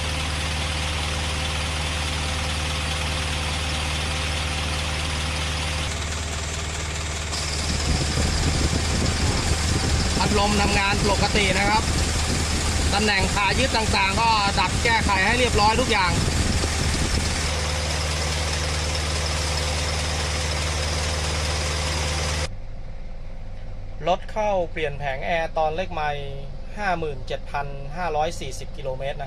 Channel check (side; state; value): both; identical; correlation 1.00